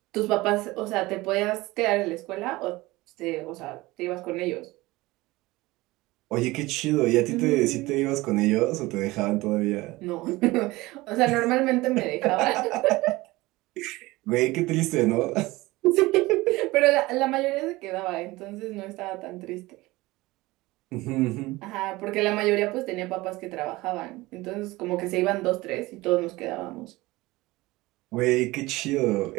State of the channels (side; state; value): left; quieter; 20.2 dB